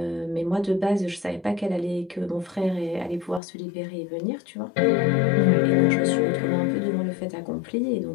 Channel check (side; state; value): right; drops out; at 3.4 s